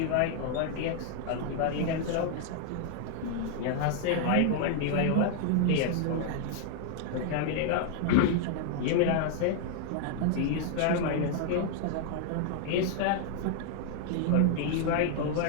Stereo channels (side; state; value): both; different; correlation 0.00